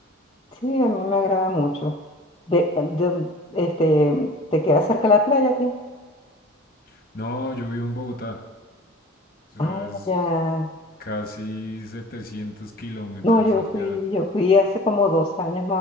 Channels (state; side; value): normal; both; correlation 0.44